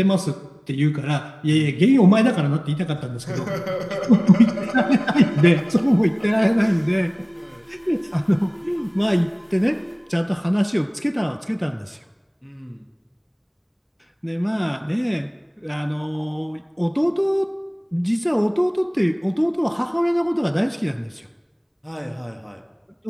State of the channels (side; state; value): both; identical; correlation 1.00